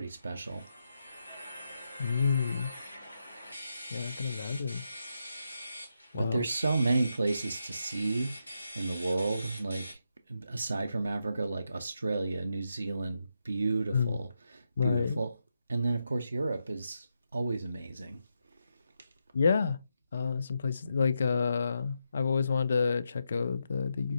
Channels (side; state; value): both; inverted; correlation -0.85